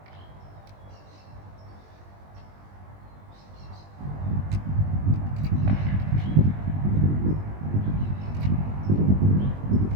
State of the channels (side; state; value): left; late; 20 ms